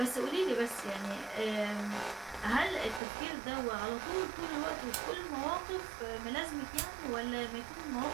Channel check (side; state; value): left; drops out; at 3.0 s